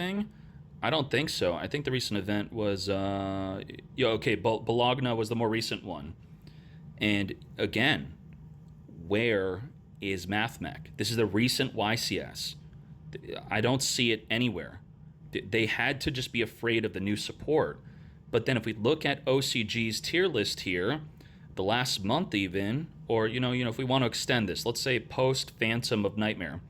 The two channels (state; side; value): identical; both; correlation 1.00